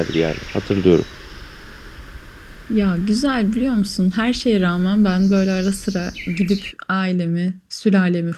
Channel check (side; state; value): both; identical; correlation 1.00